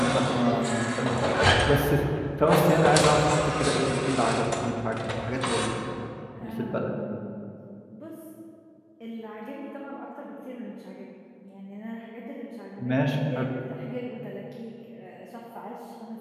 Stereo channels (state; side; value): identical; both; correlation 1.00